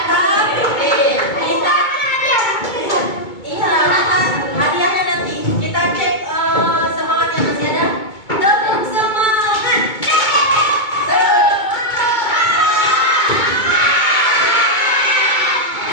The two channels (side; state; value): right; late; 2.2 ms